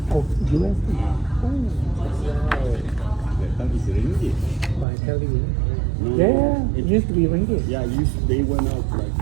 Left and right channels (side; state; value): left; drops out; at 4.9 s